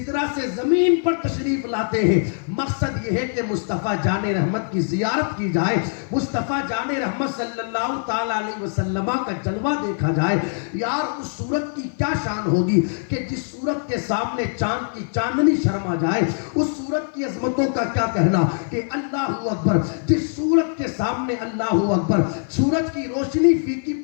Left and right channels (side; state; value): right; silent; 56 dB below the other